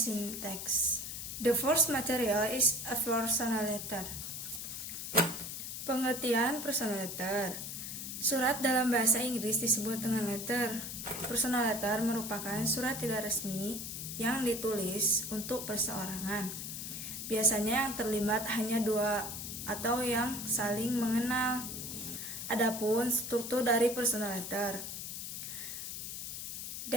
text. The first material is a personal letter. Pengertian personal letter. Surat dalam bahasa Inggris disebut dengan letter. Personal letter merupakan surat tidak resmi yang ditulis untuk perseorangan. Biasanya yang terlibat hanya dua atau yang saling mengenal. Adapun struktur dari personal letter.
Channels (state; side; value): noise; left; hiss, 6 dB below the sound